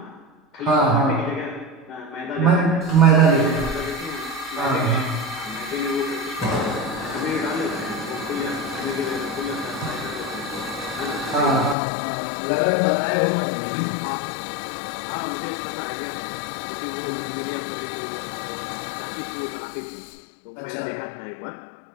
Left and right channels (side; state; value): right; drops out; at 11.8 s